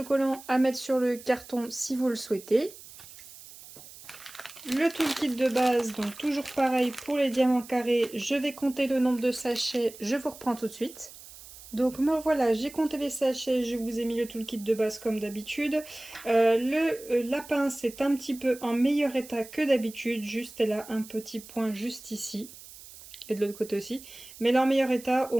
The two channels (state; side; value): noise; right; hiss, 18 dB below the sound